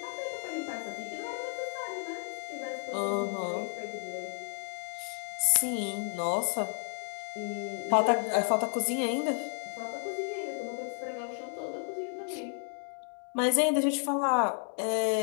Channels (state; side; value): silent; right; 56 dB below the other